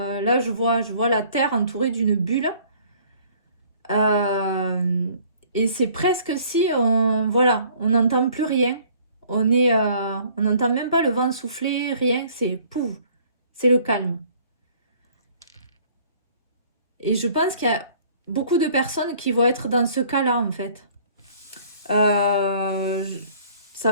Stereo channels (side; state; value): both; inverted; correlation -0.55